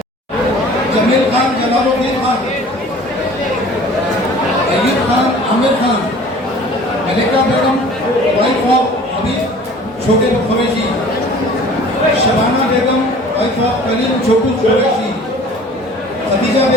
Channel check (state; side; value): normal; both; correlation 0.47